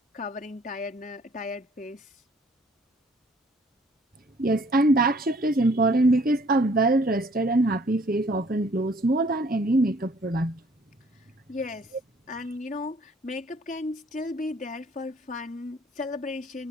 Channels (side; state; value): both; normal; correlation 0.59